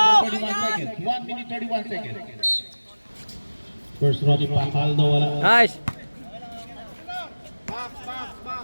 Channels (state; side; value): inverted; both; correlation -1.00